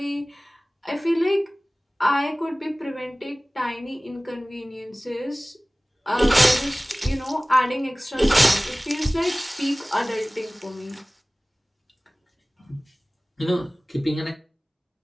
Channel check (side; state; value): both; normal; correlation 0.98